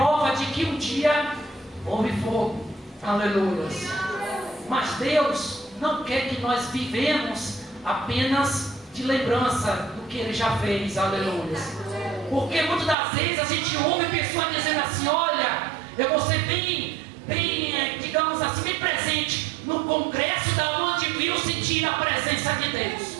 de que um dia houve fogo. Aleluia. Mas Deus não quer que nós vivemos apenas de lembrança do que ele já fez, aleluia. Porque muitas das vezes a gente ouve pessoas dizendo assim: olha, eu vou ser bem, digamos assim, bem presente no congresso da onde viu sentir a presença de Deus.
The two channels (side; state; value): left; drops out; at 13.0 s